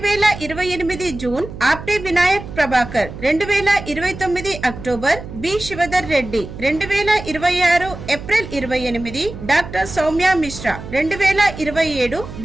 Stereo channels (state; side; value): noise; right; hum, 12 dB below the sound